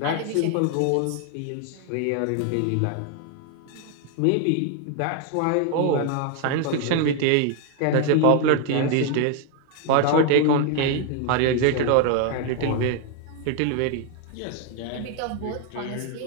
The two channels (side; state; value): both; different; correlation 0.01